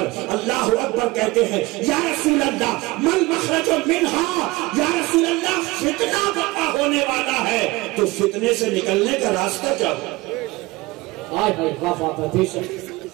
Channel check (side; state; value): left; quieter; 21.3 dB